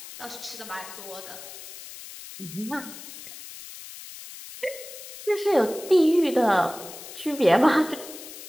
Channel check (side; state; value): left; noise; hiss, 14 dB below the sound